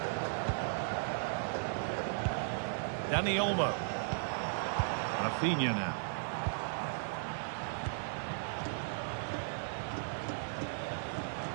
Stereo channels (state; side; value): silent; left; digital silence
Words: Dani Olmo. Rafinha now.